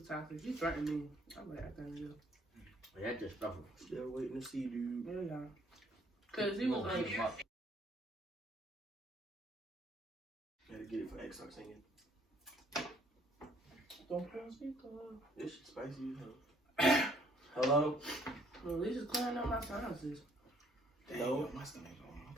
toxic. He threatened me. I'm like, I can't do. That's just stuff. Still waiting to see, dude. Yeah. Cause he was like, Gotta get it for X. Start singing. don't put on speaker. This shit spicy as hell. Hello? Well, at least it's clearing up my sinuses. No. My stomach going. I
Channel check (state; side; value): normal; both; correlation 0.63